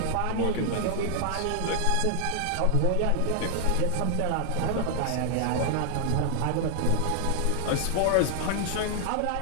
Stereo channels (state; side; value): different; both; correlation 0.00